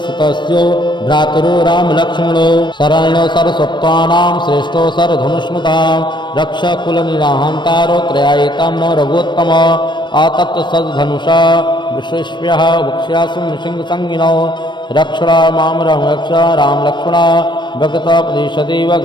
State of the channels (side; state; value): right; late; 0.22 ms